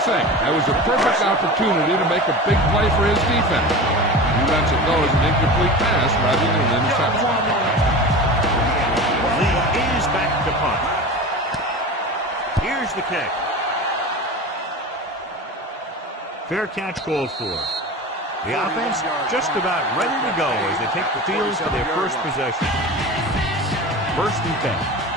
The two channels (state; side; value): normal; both; correlation 0.31